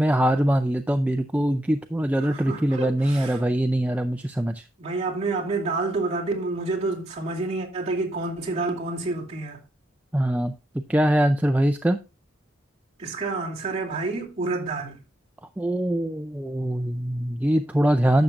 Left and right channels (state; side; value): normal; both; correlation 0.82